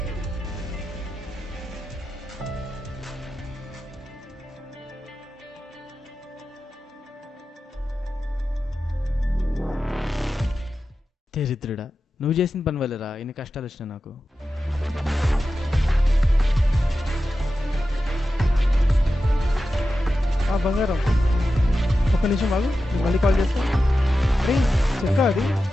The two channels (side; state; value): both; normal; correlation 0.92